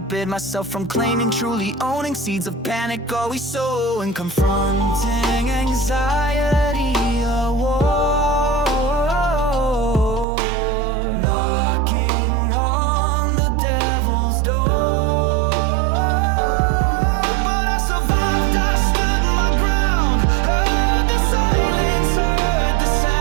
myself from claiming, truly owning. Seeds of panic always sowing, confronting anxiety, a war.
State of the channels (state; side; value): drops out; left; at 10.2 s